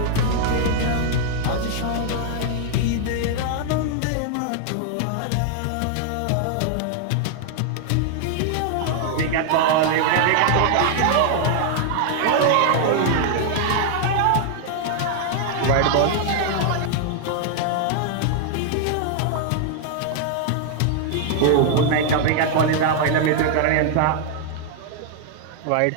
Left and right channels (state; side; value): different; both; correlation 0.00